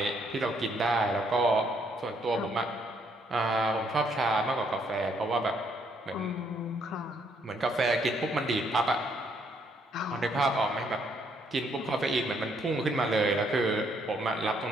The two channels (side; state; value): both; normal; correlation 0.70